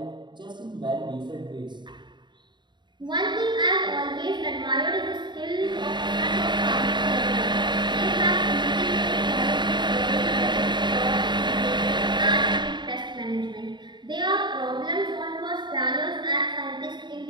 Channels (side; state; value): left; late; 0.22 ms